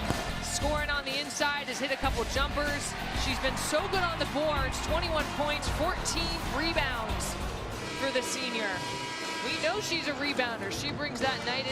Scoring on the inside, has hit a couple jumpers. She's been so good on the boards, 21 points, 14 rebounds for the senior. We know she's a rebounder. She brings that night in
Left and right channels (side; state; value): both; identical; correlation 1.00